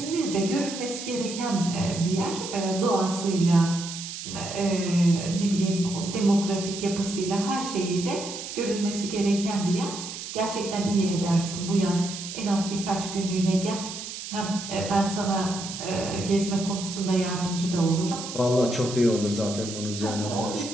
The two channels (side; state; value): right; noise; hiss, 9 dB below the sound